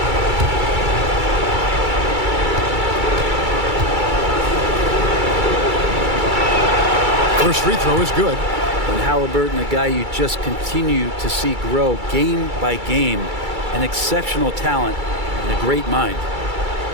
First free throw is good. And Haliburton, a guy you just continue to see grow game by game, an exceptional talent and a great mind.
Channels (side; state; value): left; late; 2.3 ms